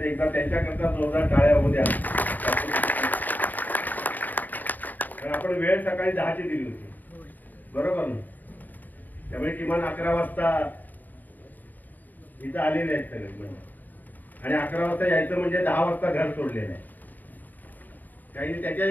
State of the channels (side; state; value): right; late; 0.086 ms